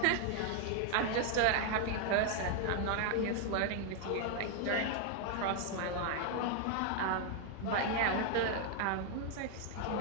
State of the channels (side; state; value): both; different; correlation 0.00